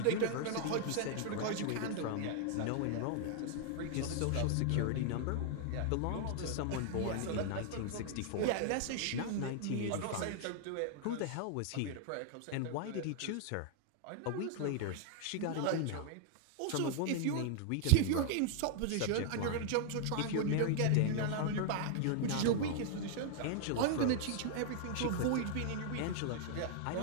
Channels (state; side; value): different; both; correlation 0.00